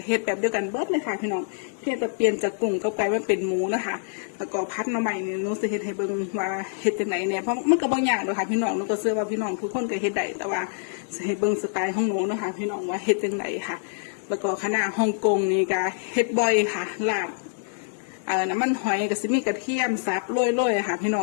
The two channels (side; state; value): right; silent; 61 dB below the other